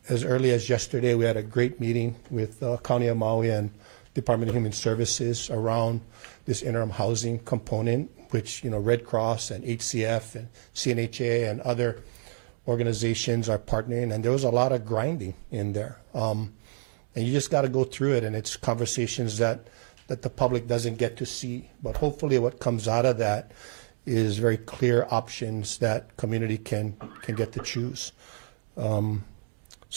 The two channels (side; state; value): left; silent; digital silence